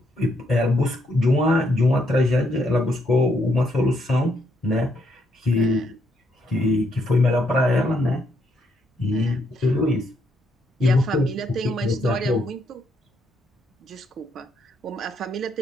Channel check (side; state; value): both; normal; correlation 0.75